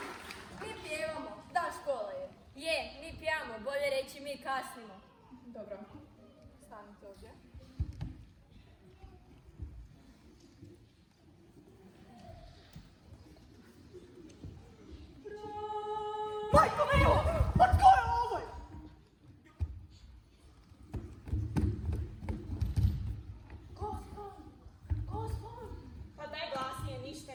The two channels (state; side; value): identical; both; correlation 1.00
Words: Mi pjevamo, da škola je. Je, mi pjevamo, bolje reći mi kasnimo. Dobro, stanite ovdje. Majko milo, pa tko je ovo? Gospon! Pa daj glasnije, ništa